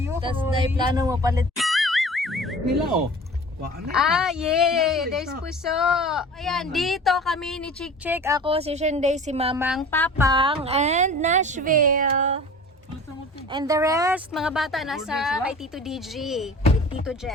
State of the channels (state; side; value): normal; both; correlation 0.41